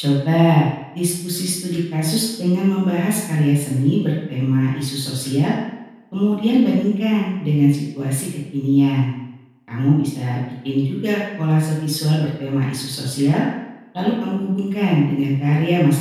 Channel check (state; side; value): identical; both; correlation 1.00